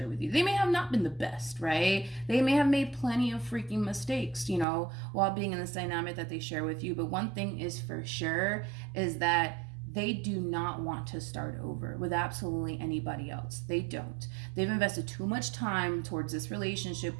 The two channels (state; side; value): drops out; left; at 4.7 s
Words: with you. They may have not been the best, right? They may have made plenty of freaking mistakes, you know, while being in this dynamic that they share with you. But one thing is for sure is that they do not want to start over with absolutely anybody else. They don't. They've invested too much time towards this relationship